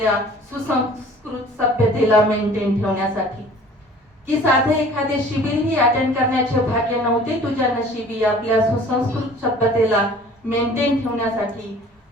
सुसंस्कृत सभ्यतेला मेंटेन ठेवण्यासाठी. की साधे एखादे शिबिरही अटेंड करण्याचे भाग्य नव्हते तुझ्या नशिबी, आपल्या सुसंस्कृत सभ्यतेला मेंटेन ठेवण्यासाठी.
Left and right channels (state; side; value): normal; both; correlation 0.49